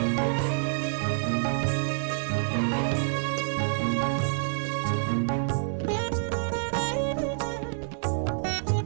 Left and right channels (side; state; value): left; silent; 60 dB below the other